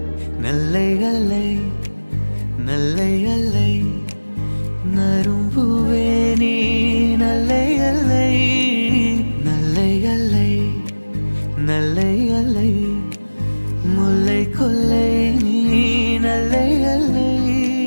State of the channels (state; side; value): inverted; both; correlation -1.00